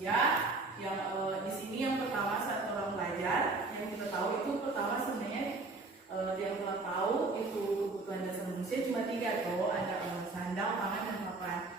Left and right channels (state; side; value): quieter; left; 3.5 dB